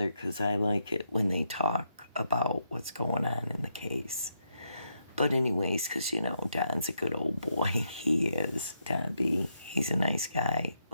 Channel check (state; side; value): inverted; both; correlation -0.80